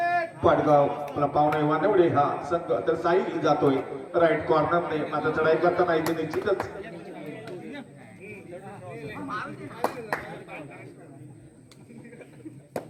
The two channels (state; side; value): identical; both; correlation 1.00